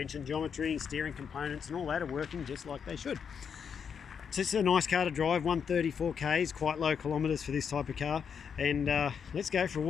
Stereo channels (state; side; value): quieter; right; 7.0 dB